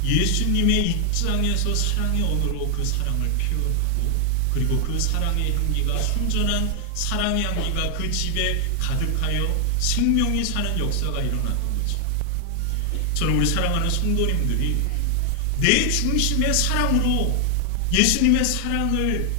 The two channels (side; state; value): both; different; correlation 0.00